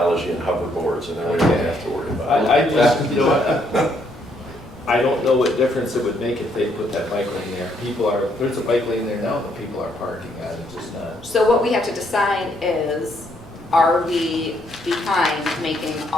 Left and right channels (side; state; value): right; noise; rumble, 22 dB below the sound